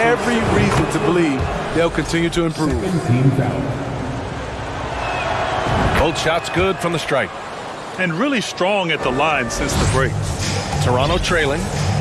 reason to believe they'll continue to improve. Both shots good from the stripe. And really strong at the line since the break. Toronto trailing.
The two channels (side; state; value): both; identical; correlation 1.00